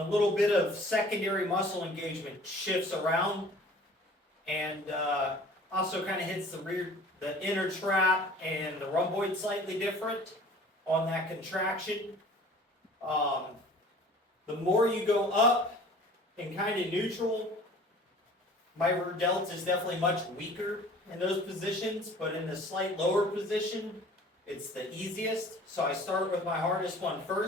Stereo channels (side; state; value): both; normal; correlation 0.48